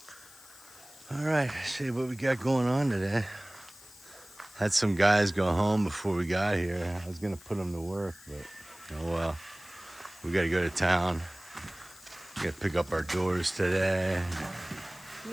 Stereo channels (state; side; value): noise; left; hiss, 21 dB below the sound